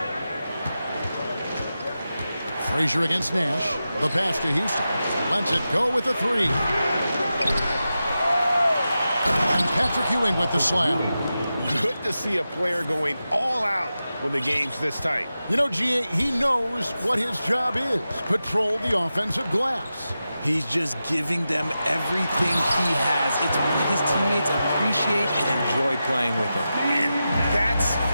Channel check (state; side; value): inverted; both; correlation -0.91